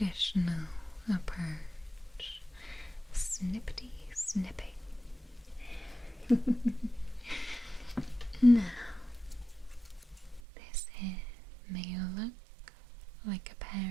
approach. Snippety snipping. Now, this here may look like a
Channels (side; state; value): left; drops out; at 10.4 s